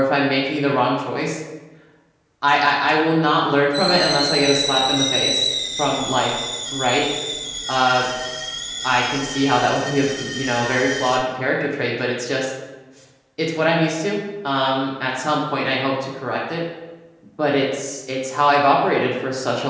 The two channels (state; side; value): identical; both; correlation 1.00